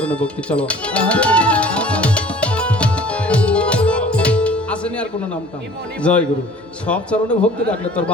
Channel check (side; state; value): both; normal; correlation 0.49